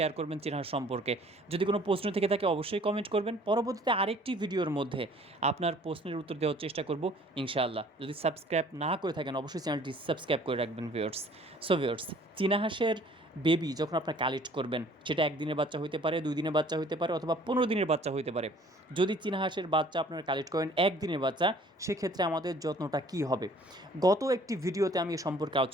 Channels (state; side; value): normal; both; correlation 0.54